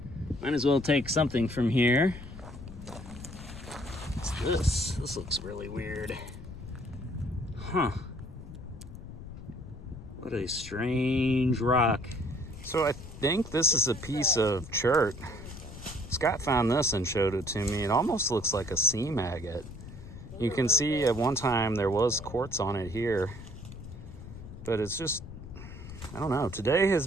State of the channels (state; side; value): noise; left; rumble, 13 dB below the sound